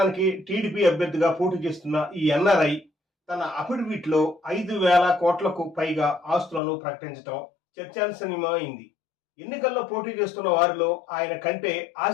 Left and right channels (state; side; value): drops out; right; at 6.6 s